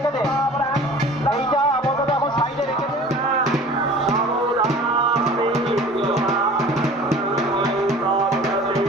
দে, এইটা আপাতত এখন সাইডে রেখে দে।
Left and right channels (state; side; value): normal; both; correlation 0.44